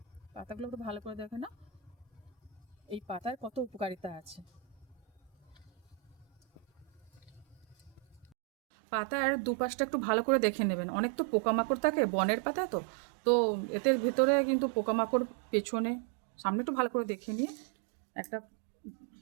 পাতাগুলো একটু ভালো করে দেখে নাও, এই পাতার কত উপকারিতা আছে। পাতার দুপাশটা একটু ভালো করে দেখে নেবেন, অনেক তো পোকামাকড় থাকে বনের পাতা, তো তো এতে ভেতরে কিন্তু পোকামাকড় পেছনে সামনে একটু ভালো করে দেখে নিয়ে একটা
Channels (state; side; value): drops out; left; at 8.3 s